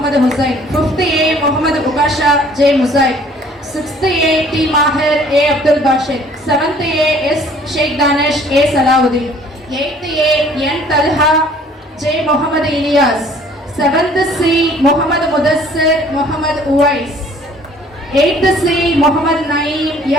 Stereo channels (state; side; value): normal; both; correlation 0.55